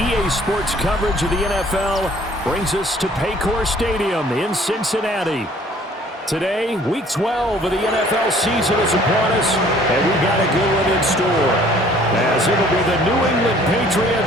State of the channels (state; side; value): normal; both; correlation 0.56